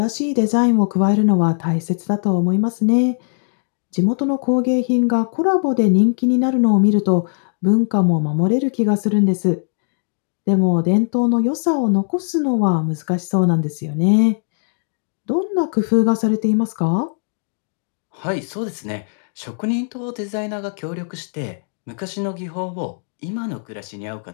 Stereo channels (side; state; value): right; silent; digital silence